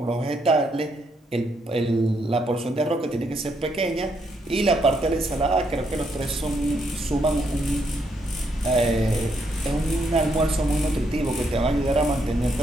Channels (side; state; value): both; normal; correlation 0.76